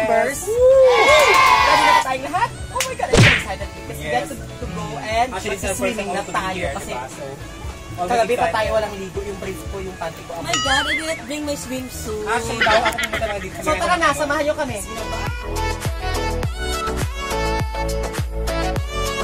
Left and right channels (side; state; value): both; identical; correlation 1.00